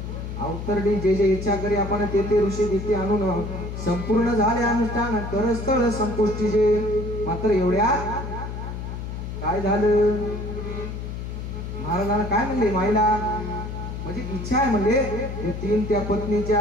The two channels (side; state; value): left; noise; hum, 7 dB below the sound